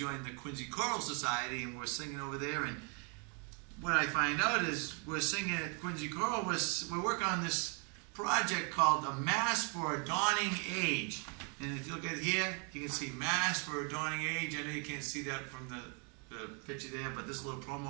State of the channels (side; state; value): left; quieter; 36.8 dB